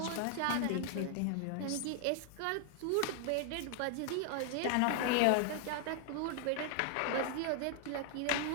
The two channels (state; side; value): different; both; correlation 0.00